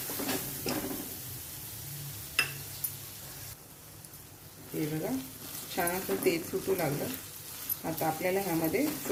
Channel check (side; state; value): both; identical; correlation 1.00